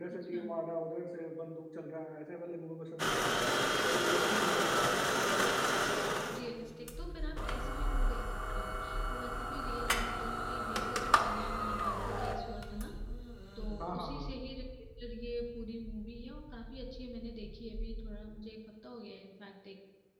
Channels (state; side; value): identical; both; correlation 1.00